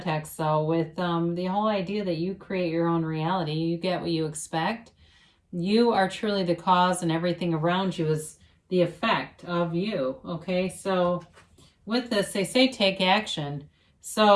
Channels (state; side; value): identical; both; correlation 1.00